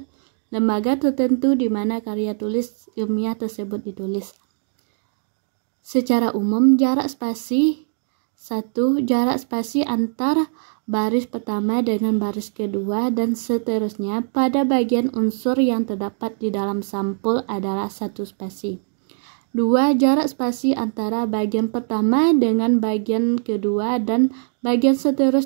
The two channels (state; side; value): silent; left; 64 dB below the other